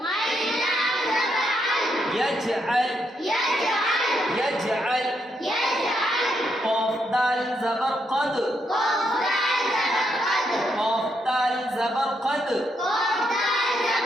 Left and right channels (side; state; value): both; normal; correlation 0.78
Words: यजअल, यजअल। कौफ दाल ज़बर क़द, कौफ दाल ज़बर क़द।